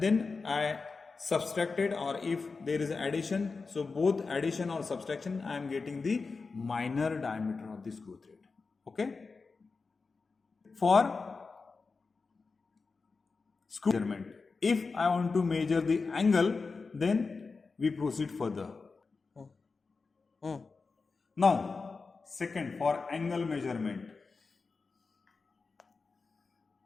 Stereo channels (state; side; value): quieter; right; 4.4 dB